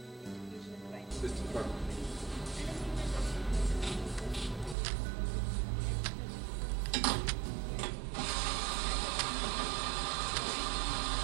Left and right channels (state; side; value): drops out; left; at 4.8 s